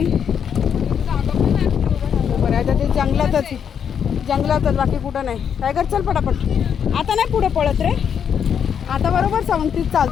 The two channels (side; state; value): right; quieter; 7.8 dB